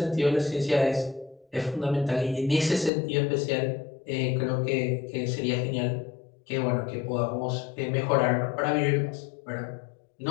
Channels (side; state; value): right; drops out; at 2.9 s